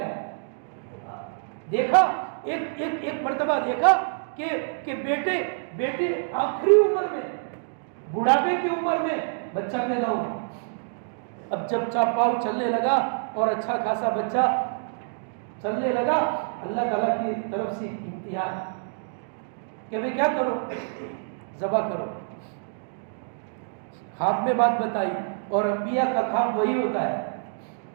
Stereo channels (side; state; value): left; silent; digital silence